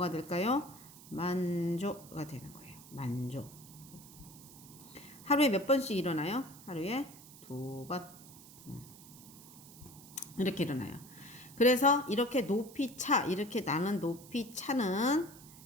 될까요? 만조가 되는 거예요. 만조. 하루에 몇 번씩 일어나요? 하루에 2번. 이렇게 일어나요. 그래서 이렇게 이렇게 나는 높이 차는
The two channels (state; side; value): noise; right; hiss, 19 dB below the sound